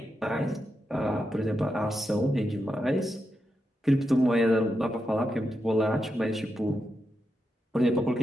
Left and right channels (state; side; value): normal; both; correlation 0.86